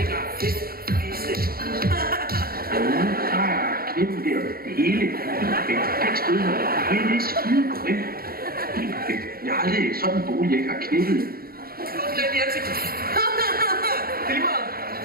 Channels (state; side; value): late; left; 0.44 ms